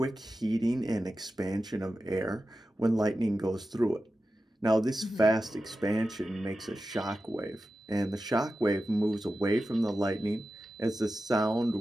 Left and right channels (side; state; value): both; normal; correlation 0.92